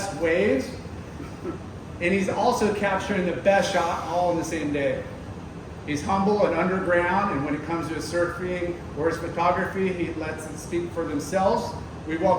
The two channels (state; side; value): identical; both; correlation 1.00